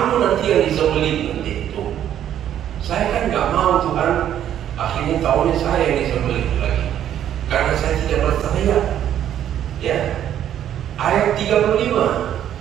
nanti yang disembelih nanti itu. Saya kan nggak mau Tuhan akhirnya tahunya saya yang disembelih lagi, karena saya tidak berteriak. Ya, ayat 35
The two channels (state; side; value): quieter; left; 10.6 dB